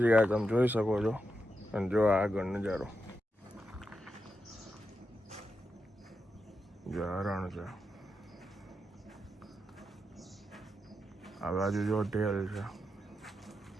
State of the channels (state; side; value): normal; both; correlation 0.86